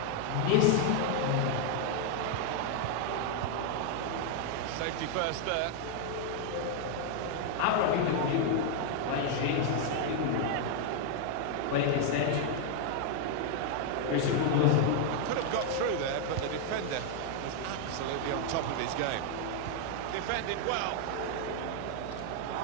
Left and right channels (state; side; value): different; both; correlation 0.00